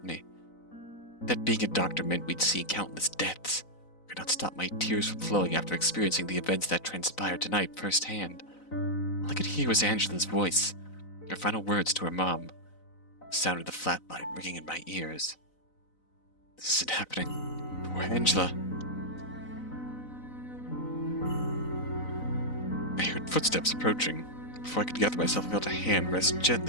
me. That being a doctor meant we'd see countless deaths. I could not stop my tears from flowing after experiencing the events that transpired tonight firsthand. All I could hear was Angela's voice, her final words to her mom. The sound of the flatline ringing in my ears. This isn't happening. Poor Angela. I heard footsteps approaching. Before I could gather myself, I felt a hand rest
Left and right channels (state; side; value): late; right; 4.0 ms